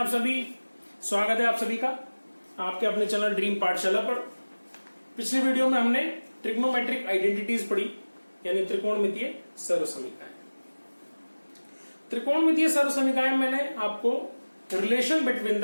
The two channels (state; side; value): inverted; both; correlation -1.00